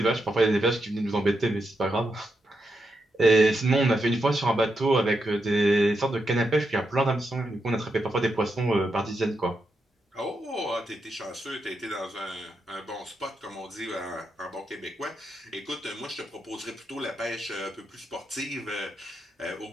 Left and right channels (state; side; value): normal; both; correlation 0.84